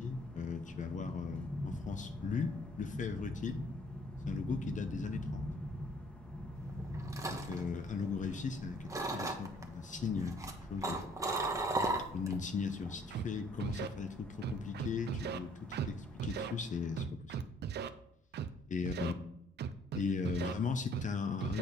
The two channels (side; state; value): both; normal; correlation 0.60